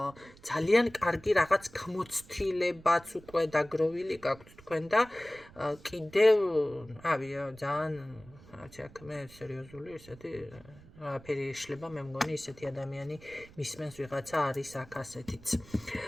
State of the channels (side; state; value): right; noise; rumble, 22 dB below the sound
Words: ძალიან კარგი რაღაც გამოცდილებაც უკვე დაგროვილი გაქვთ თქვენ და კიდევ ძალიან აქ მე სერიოზული ესეთი ფერი ეშლება მე მგონი ისეთი ადამიანი მისმენს ვიღაცა არის აქ ასეთიც